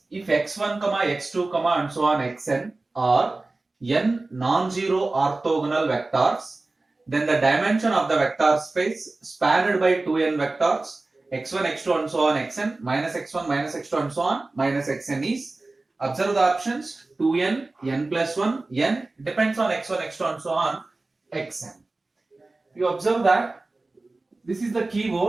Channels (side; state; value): left; quieter; 3.2 dB